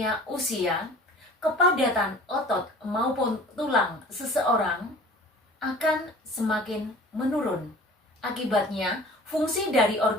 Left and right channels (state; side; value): normal; both; correlation 0.45